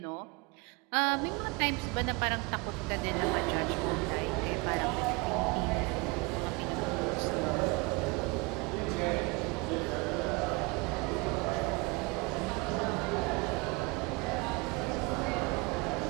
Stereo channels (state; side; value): quieter; left; 27.0 dB